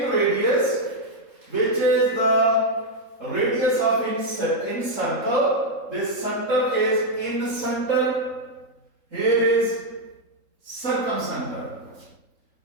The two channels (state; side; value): late; left; 3.7 ms